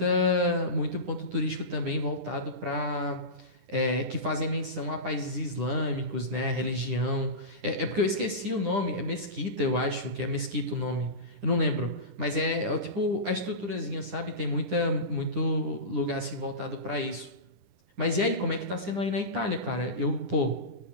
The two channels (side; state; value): left; late; 10 ms